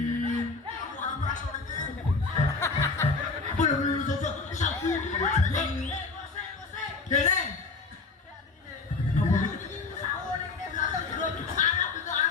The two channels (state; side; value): quieter; right; 4.1 dB